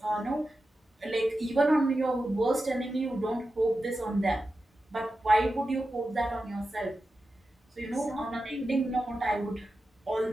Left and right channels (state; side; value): normal; both; correlation 0.92